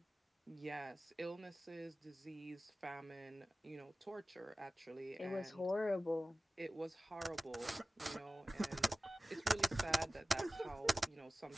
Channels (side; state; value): both; normal; correlation 0.96